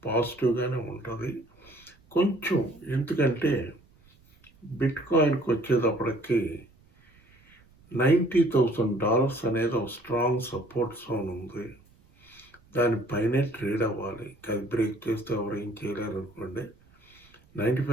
పాజిటివ్గానే ఉంటుంది కొంచెం. ఎందుకంటే బిట్ కాయిన్కి వచ్చేటప్పటికి $90,000 అనేది ఒక స్ట్రాంగ్ సపోర్ట్ జోన్ ఉంది. దానిపైనే ట్రేడ్ అవ్వాలి. అది బ్రేక్ చేస్తే ఎవరు ఏం చేయలేరు అనుకోండి.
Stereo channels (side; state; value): right; noise; rumble, 30 dB below the sound